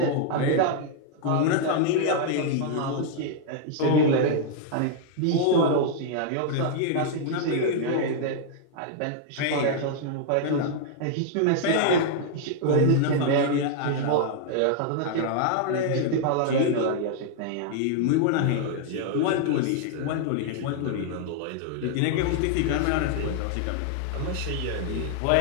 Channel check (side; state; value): both; different; correlation -0.01